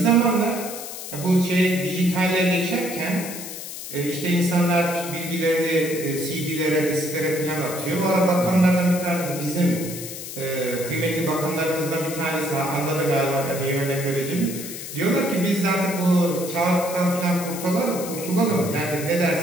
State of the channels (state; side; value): noise; left; hiss, 9 dB below the sound